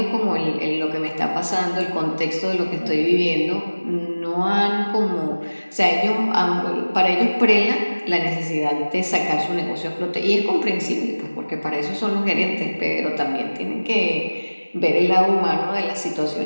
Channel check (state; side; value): inverted; both; correlation -1.00